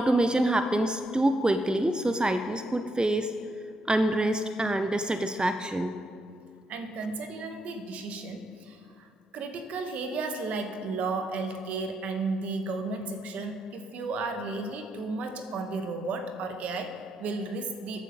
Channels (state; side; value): normal; both; correlation 0.79